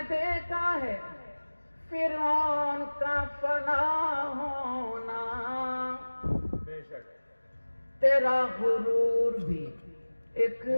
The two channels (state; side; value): inverted; both; correlation -1.00